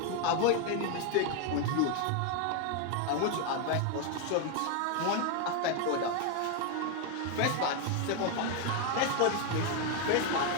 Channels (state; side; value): different; both; correlation 0.01